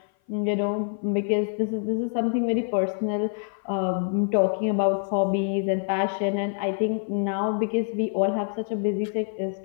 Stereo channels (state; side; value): silent; right; 56 dB below the other